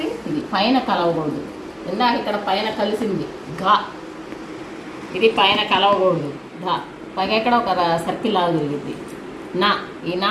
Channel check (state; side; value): identical; both; correlation 1.00